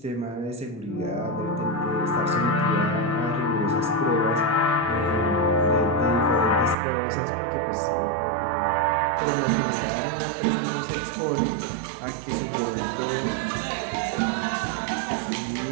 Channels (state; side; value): drops out; left; at 6.8 s